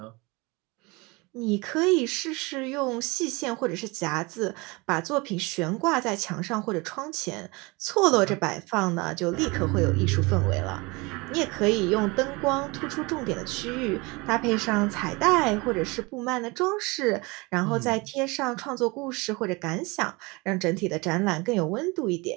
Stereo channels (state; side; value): quieter; left; 25.8 dB